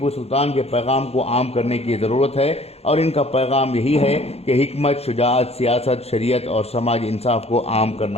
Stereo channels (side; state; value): right; late; 0.30 ms